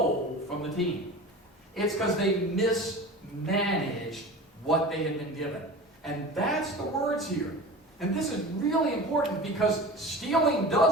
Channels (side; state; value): both; normal; correlation 0.34